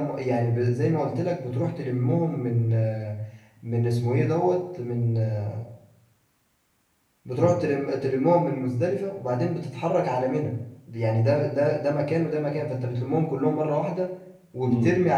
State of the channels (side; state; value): both; identical; correlation 1.00